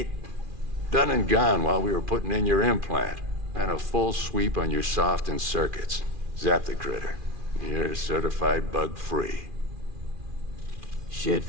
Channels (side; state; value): left; late; 2.4 ms